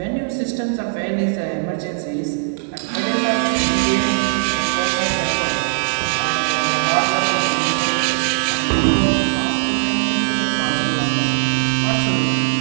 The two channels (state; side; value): silent; left; digital silence